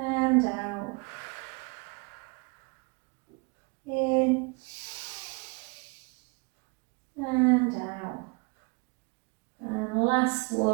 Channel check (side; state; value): left; quieter; 30.9 dB